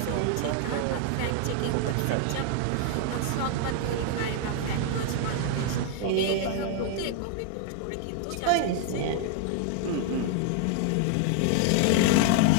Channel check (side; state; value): both; different; correlation 0.00